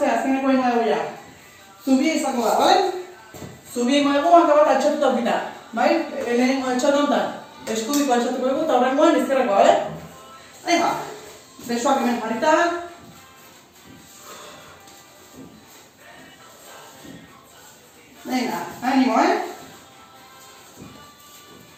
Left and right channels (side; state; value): both; identical; correlation 1.00